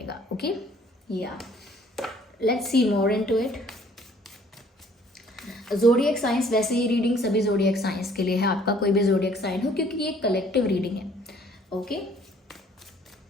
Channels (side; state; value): both; normal; correlation 0.58